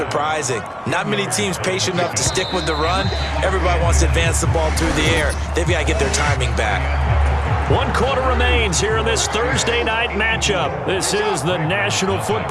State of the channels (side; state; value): both; identical; correlation 1.00